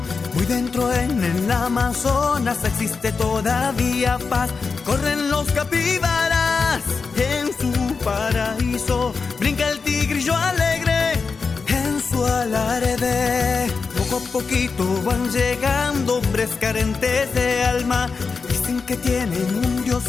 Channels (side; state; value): right; quieter; 4.9 dB